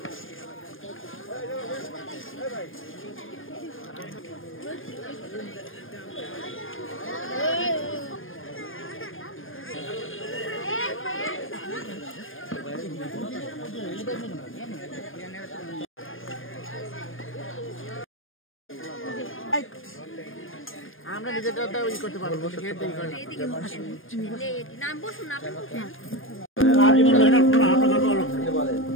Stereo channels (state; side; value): late; right; 0.59 ms